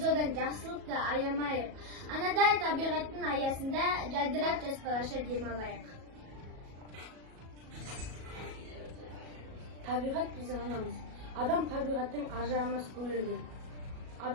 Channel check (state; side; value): late; left; 37 ms